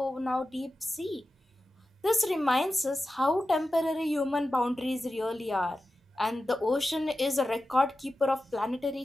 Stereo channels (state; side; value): normal; both; correlation 0.93